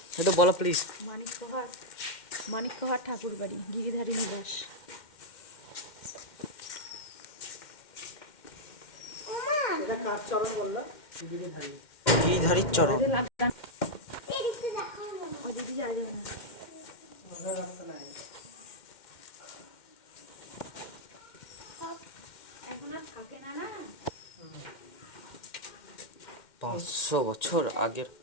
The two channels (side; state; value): right; late; 2.1 ms